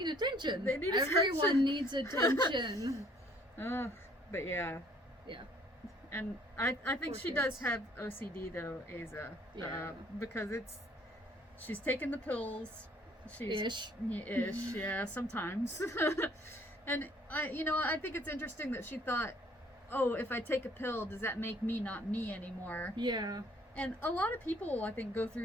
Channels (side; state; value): both; normal; correlation 0.60